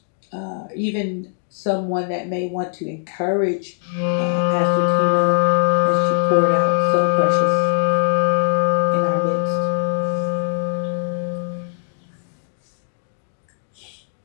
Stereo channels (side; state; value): right; silent; digital silence